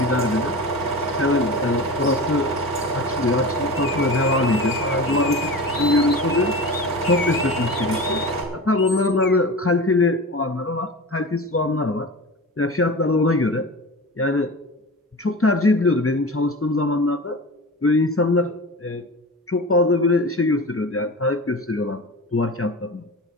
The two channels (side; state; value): both; normal; correlation 0.31